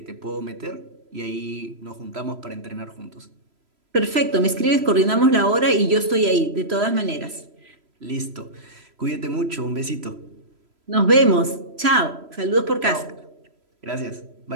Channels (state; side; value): late; left; 3.0 ms